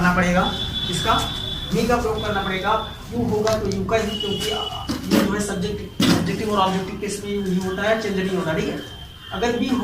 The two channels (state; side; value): identical; both; correlation 1.00